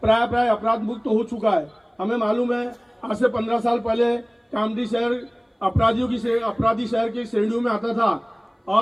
प्राय अपराध मुक्त हो चुका है। हमें मालूम है आज से 15 साल पहले कामठी शहर अपराधी शहर की श्रेणियों में आता था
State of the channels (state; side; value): identical; both; correlation 1.00